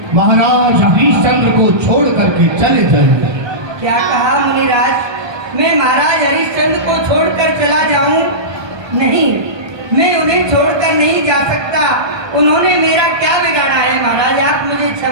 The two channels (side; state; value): left; late; 1.2 ms